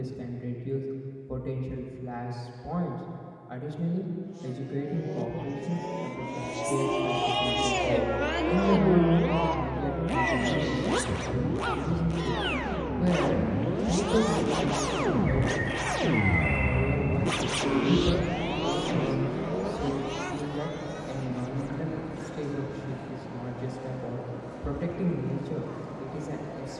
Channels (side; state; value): both; identical; correlation 1.00